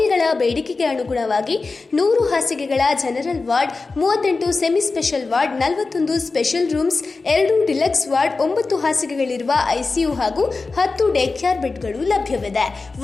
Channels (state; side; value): quieter; right; 3.9 dB